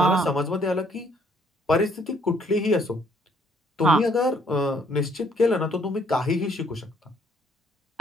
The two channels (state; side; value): normal; both; correlation 0.65